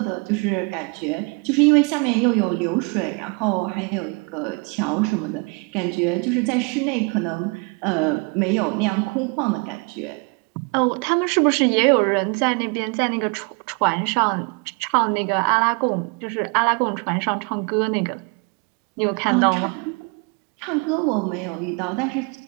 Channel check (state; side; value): quieter; left; 32.5 dB